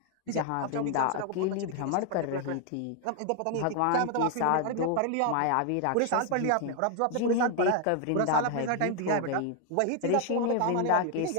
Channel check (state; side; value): different; both; correlation 0.00